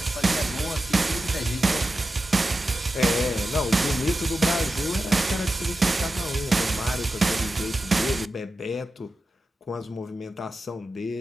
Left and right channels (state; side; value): normal; both; correlation 0.92